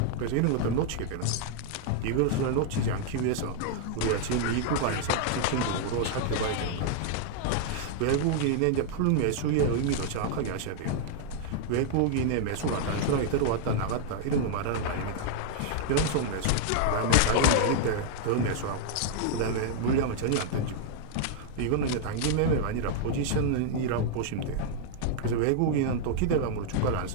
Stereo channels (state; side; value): different; both; correlation -0.01